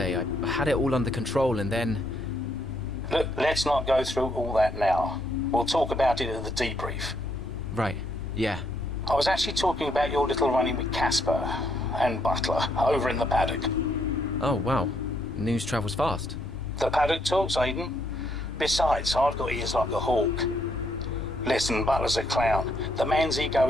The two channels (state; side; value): normal; both; correlation 0.73